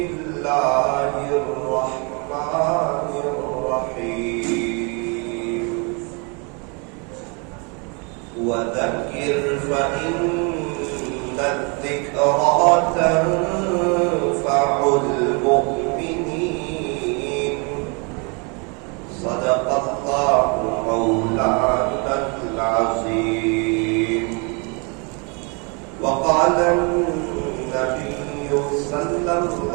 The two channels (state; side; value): quieter; left; 33.2 dB